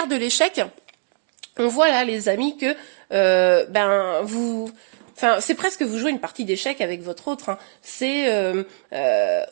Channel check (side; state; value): left; silent; 57 dB below the other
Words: de l'échec, on voit là les amis que vous... Enfin, c'est presque vous jouez une partie d'échecs avec votre autre. Hein. C'est,